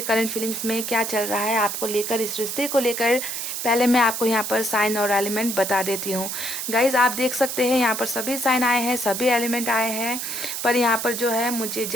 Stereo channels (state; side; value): noise; right; hiss, 4 dB below the sound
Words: करंट फीलिंग्स में क्या चल रहा है आपको लेकर, इस रिश्ते को लेकर। पहले मैं आपको यहाँ पर साइन और एलिमेंट बता देती हूँ गाइज। आप देख सकते हैं यहाँ पर सभी साइन आए हैं, सभी एलिमेंट आए हैं, पर यहाँ पर जो है मुझे